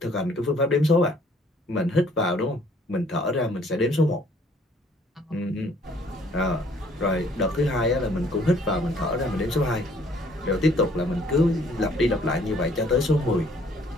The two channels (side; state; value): both; normal; correlation 0.60